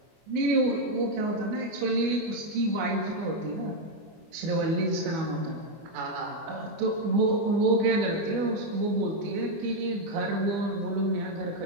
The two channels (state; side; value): late; left; 24 ms